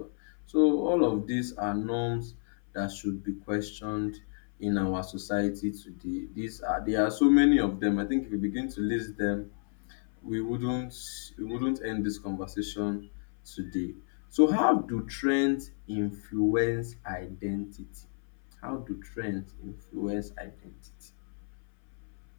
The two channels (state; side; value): silent; right; 57 dB below the other